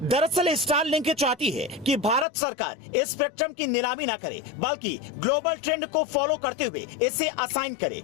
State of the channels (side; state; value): right; drops out; at 2.2 s